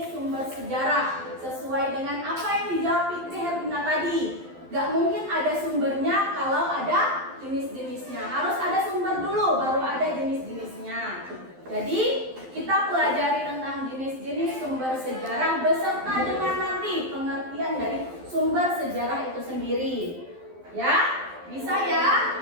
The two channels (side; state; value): left; late; 12 ms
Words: sumber sejarah sesuai dengan apa yang dijawab Fitri Herlina tadi. Gak mungkin ada sumbernya kalau ada jenis-jenisnya. Harus ada sumber dulu baru ada jenis-jenisnya. Jadi kita pelajari tentang jenis-jenis sumber sejarah beserta dengan nanti pengertian dari sumber sejarah itu sendiri. Ya? Bisa ya?